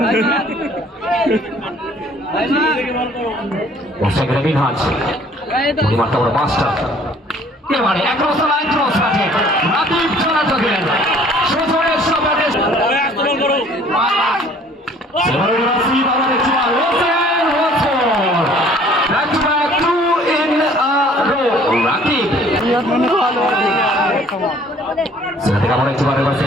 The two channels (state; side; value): normal; both; correlation 0.55